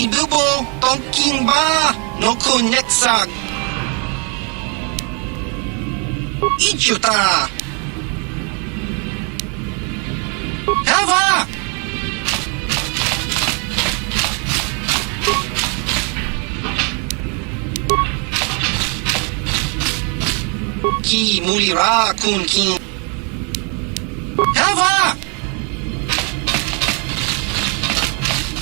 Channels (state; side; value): quieter; left; 35.6 dB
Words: dubo. Tonking ba. No kuneksag. Ichuta. Hava. Ki mulira kun kin. Hava.